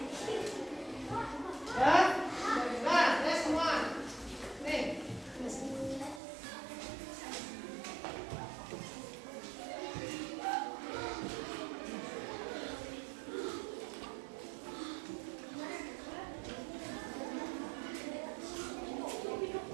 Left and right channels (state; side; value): drops out; left; at 6.2 s